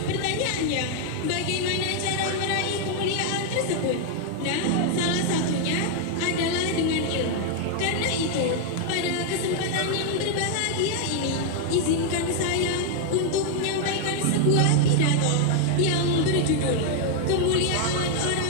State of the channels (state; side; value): different; both; correlation 0.00